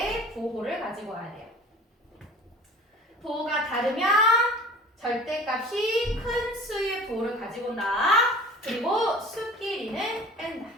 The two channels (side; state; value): both; normal; correlation 0.43